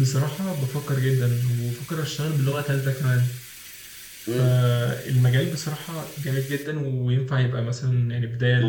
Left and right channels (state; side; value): identical; both; correlation 1.00